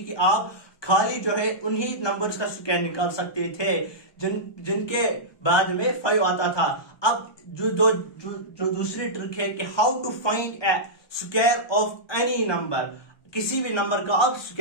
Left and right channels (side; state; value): right; late; 1.2 ms